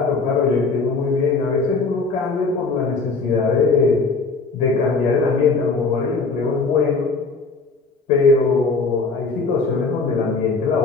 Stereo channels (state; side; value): quieter; right; 4.1 dB